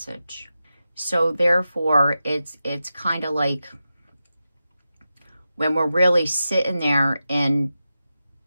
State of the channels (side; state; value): both; inverted; correlation -0.91